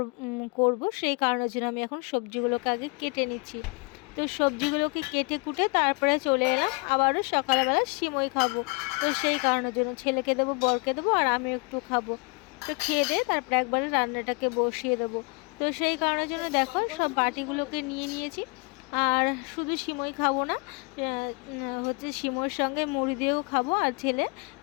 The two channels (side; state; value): right; quieter; 31.7 dB